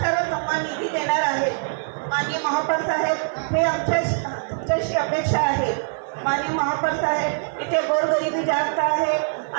सर्व समान निधी देणार आहेत. माननीय महापौर साहेब हे तुमच्याशी अपेक्षा आहे. माननीय महापौर साहेब इथे गोरगरिबी जास्त आहे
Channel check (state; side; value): silent; left; digital silence